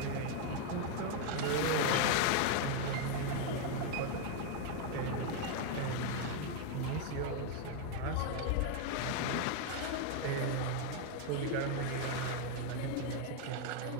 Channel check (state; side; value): different; both; correlation 0.01